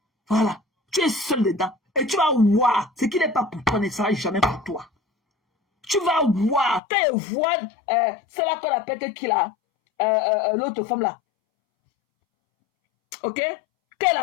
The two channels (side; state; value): right; drops out; at 6.8 s